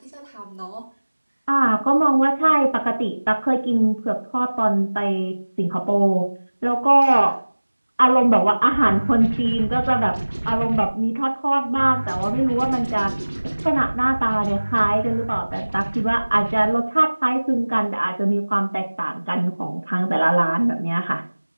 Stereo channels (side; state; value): both; inverted; correlation -1.00